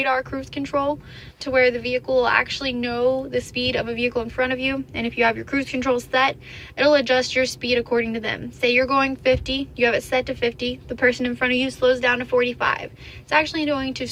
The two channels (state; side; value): identical; both; correlation 1.00